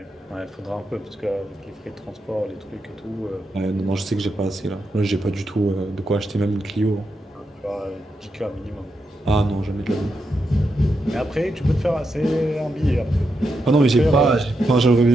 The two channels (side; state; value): both; normal; correlation 0.85